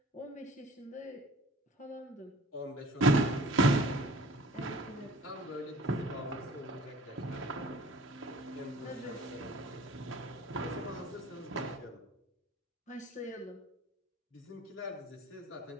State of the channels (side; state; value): both; normal; correlation 0.48